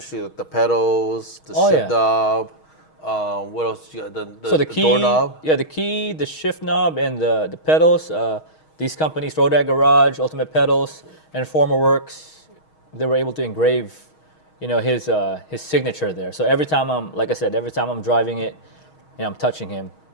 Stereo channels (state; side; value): late; right; 6.4 ms